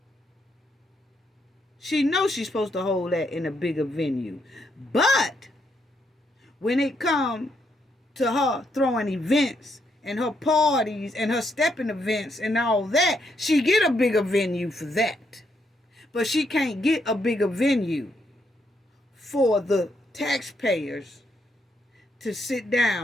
She knows she's supposed to hold that in a bigger venue. But when it comes to her throwing events and her parties and her stepping events and all that, she get a bigger venue for that. But she can't get a bigger venue for the taxpayers to sit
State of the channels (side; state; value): both; normal; correlation 0.77